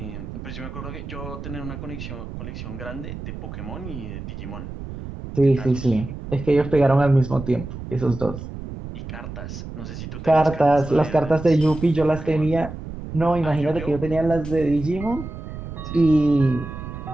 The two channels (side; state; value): right; noise; rumble, 10 dB below the sound